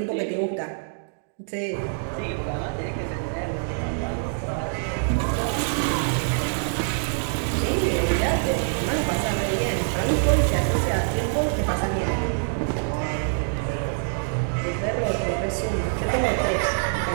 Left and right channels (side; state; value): left; silent; 62 dB below the other